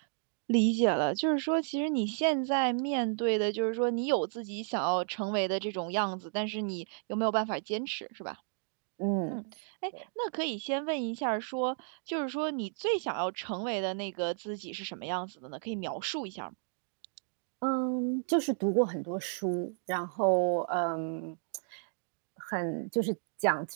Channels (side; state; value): left; silent; digital silence